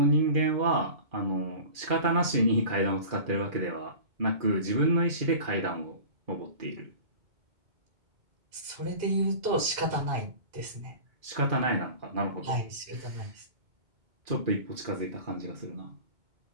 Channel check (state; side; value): late; left; 2.2 ms